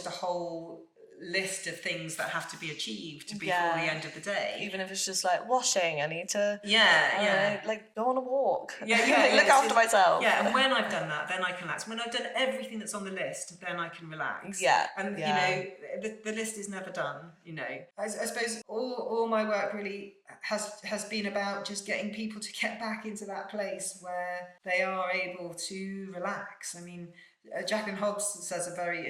a whole list of things that have to be achieved before the end of the day. Even if it's just like washing, I need to like go on a walk. Look after myself. Yeah, and when I've done that, then I can relax. When I've done everything that's on the list, then I can relax. And you know, the list is never done. You know, I suppose all my work really has been about just getting people to get back into that place where they are able to relax. I mean, Jacqueline Hobbs says a very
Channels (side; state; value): both; identical; correlation 1.00